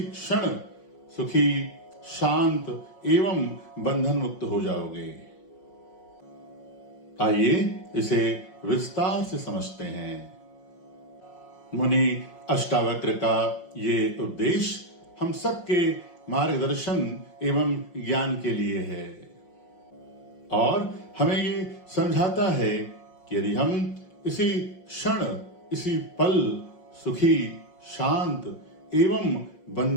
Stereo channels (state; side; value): late; right; 5.6 ms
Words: क्षण सुखी, शांत एवं बंधन मुक्त हो जाओगे। आइए इसे विस्तार से समझते हैं। मुनि अष्टावक्र का ये उद्देश्य हम सबके मार्गदर्शन एवं ज्ञान के लिए है और हमें ये समझाता है कि यदि हम इसी क्षण, इसी पल सुखी, शांत एवं